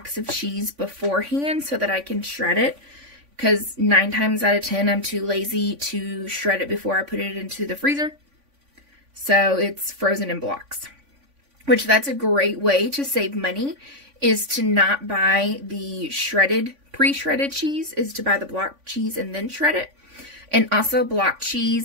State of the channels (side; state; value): left; late; 3.5 ms